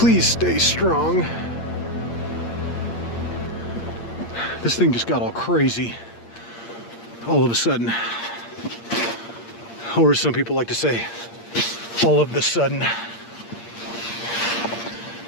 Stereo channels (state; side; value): late; right; 8.6 ms